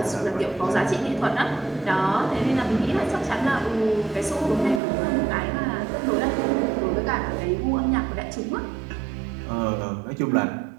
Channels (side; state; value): left; drops out; at 4.8 s